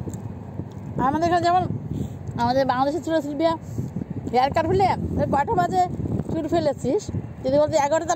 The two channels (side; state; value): both; identical; correlation 1.00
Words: আমাদের এখানে যেমন আমাদের বাংলাদেশের ছিল সিলভিয়া, হেয়ার কাট হলে 5টা বাজে চুল ফেলেছিস, যদি বলতে 11,